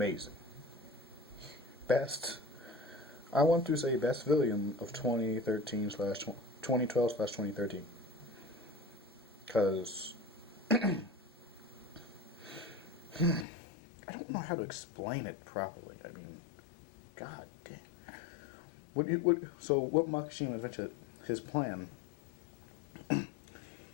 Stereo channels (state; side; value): drops out; right; at 13.5 s